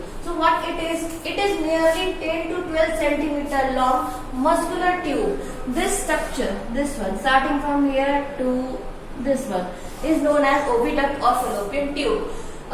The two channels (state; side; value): identical; both; correlation 1.00